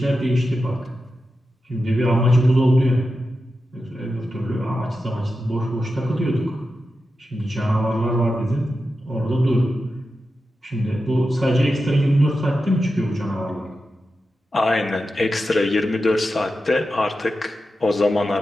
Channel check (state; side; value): normal; both; correlation 0.90